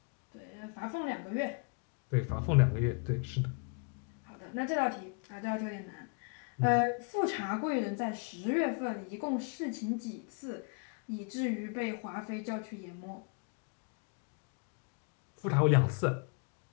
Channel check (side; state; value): right; quieter; 37.5 dB